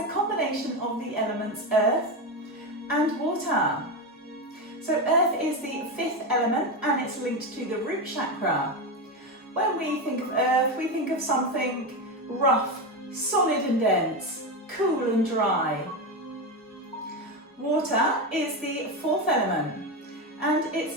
combination of the elements earth and water. So earth is the fifth element and it's linked to the root chakra. When we think of earth, we think of something rough, solid and dense, cool and dry. Water is the fourth element and it's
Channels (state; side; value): normal; both; correlation 0.15